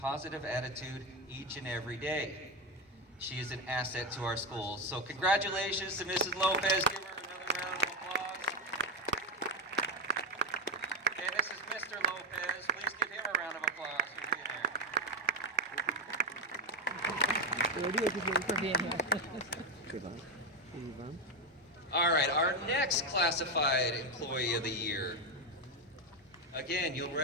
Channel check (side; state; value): both; normal; correlation 0.10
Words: attitude each and every day. She is an asset to our schools. So congratulations to Mrs. Lopez. Give her another round of applause. And this is Mr. Lopez. Please give him a round of applause for being here. All right, our next classified employee of the year. Again, you'll